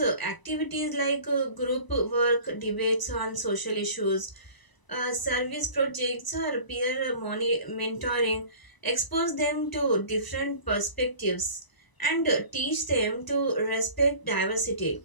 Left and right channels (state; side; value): late; right; 1.0 ms